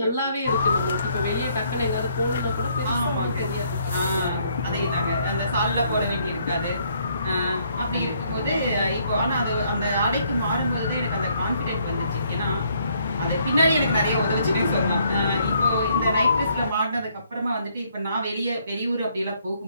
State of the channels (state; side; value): inverted; both; correlation -0.68